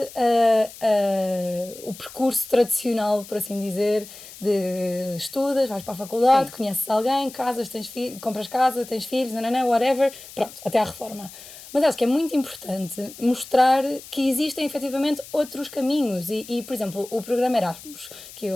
o percurso tradicional, por assim dizer, de estudas, vais para a faculdade, conheces alguém, casas, compras casa, tens filhos, whatever, pronto, até à reforma. Mas acho que é muito importante mostrar que existem efetivamente outros caminhos e por exemplo, o programa Erasmus, que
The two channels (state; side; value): noise; left; hiss, 17 dB below the sound